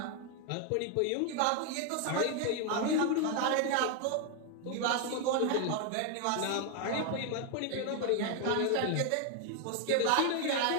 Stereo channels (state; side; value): different; both; correlation 0.01